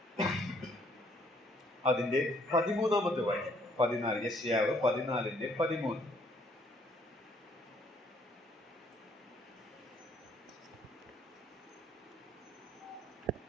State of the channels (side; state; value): both; normal; correlation 0.65